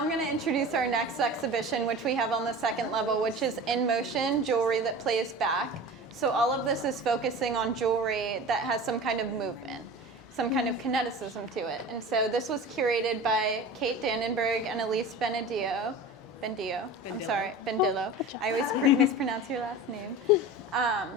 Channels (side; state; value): both; normal; correlation 0.35